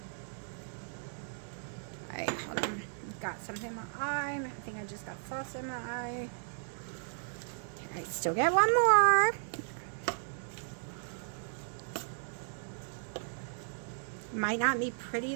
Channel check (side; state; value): left; silent; 54 dB below the other